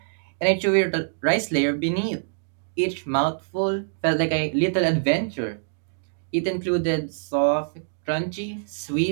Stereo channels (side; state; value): left; silent; digital silence